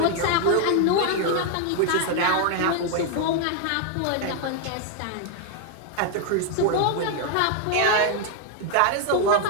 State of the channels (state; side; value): different; both; correlation 0.01